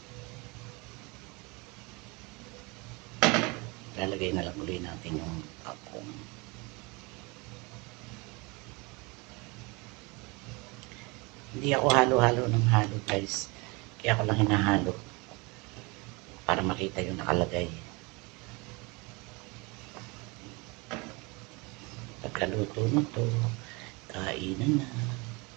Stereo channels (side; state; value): left; quieter; 27.2 dB